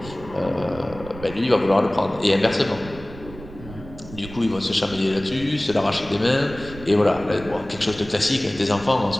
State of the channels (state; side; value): noise; right; rumble, 16 dB below the sound